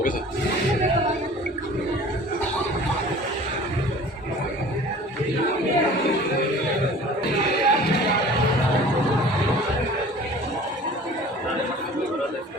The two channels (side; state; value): both; normal; correlation 0.45